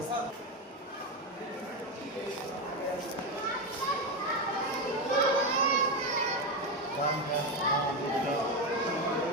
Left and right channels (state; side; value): normal; both; correlation 0.12